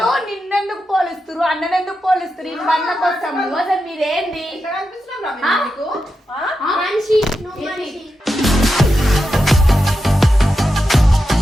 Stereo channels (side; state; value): both; normal; correlation 0.88